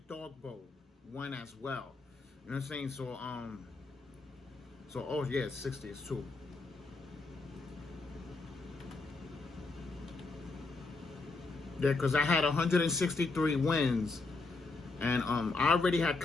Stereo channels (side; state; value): right; quieter; 3.6 dB